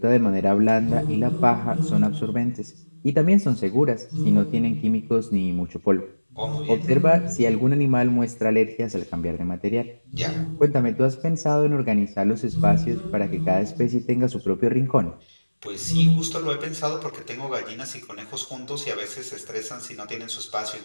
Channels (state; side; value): inverted; both; correlation -1.00